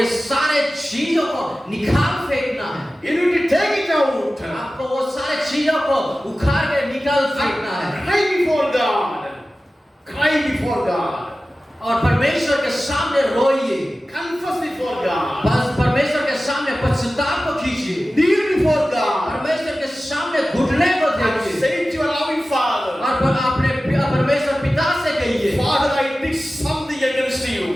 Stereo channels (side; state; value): both; normal; correlation 0.95